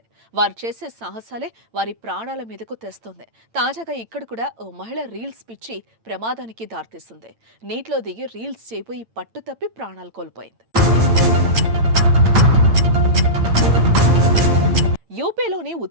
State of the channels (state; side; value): late; left; 8.9 ms